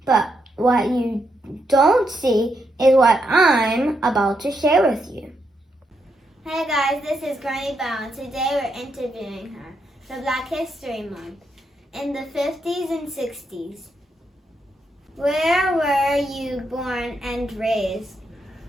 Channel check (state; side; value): normal; both; correlation 0.81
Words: But what you don't see is what I'm about to share with you. Hey guys, this is Granny Bell, and today we're interviewing her for Black History Month in the 50s and 60s. Where were you born and raised?